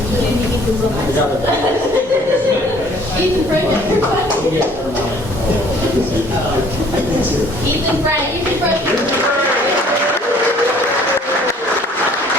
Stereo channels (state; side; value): normal; both; correlation 0.56